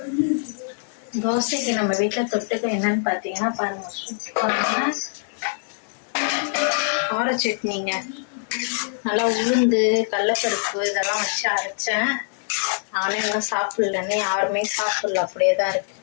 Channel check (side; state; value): right; silent; digital silence